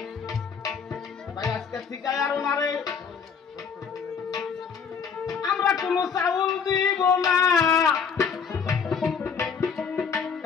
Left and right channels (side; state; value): right; quieter; 6.3 dB